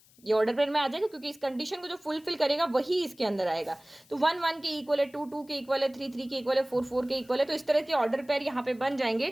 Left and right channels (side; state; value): left; noise; hiss, 28 dB below the sound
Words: ये ऑर्डर पेयर में आ जाएगा, क्योंकि इस कंडीशन को जो फुलफिल करेगा वही इसके अंदर आएगा। तो 1 1 के इक्वल है, 2 2 के इक्वल है, 3 3 के इक्वल है, 4 4 के इक्वल है। तो इस तरह के ऑर्डर पेयर यहाँ पे बन जाएंगे।